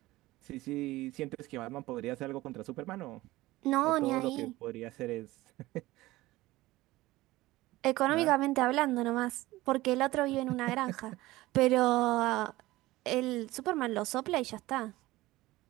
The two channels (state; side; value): quieter; left; 18.3 dB